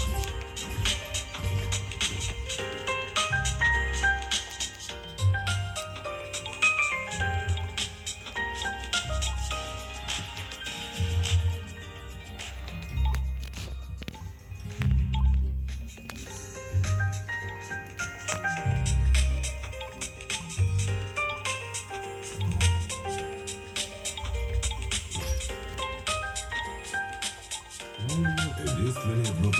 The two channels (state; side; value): identical; both; correlation 1.00